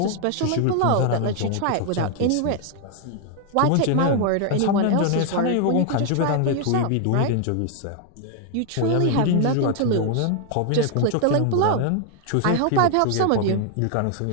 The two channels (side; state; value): both; different; correlation 0.00